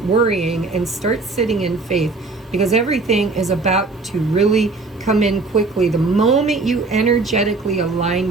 worrying and start sitting in faith, because everything is about to really come in quickly the moment you energetically align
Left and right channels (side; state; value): left; quieter; 3.7 dB